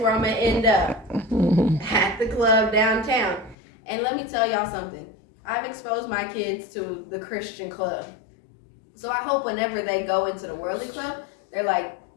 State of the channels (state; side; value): drops out; right; at 3.6 s